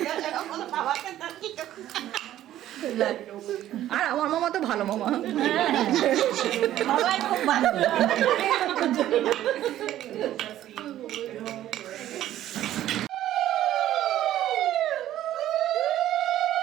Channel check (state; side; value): quieter; left; 12.9 dB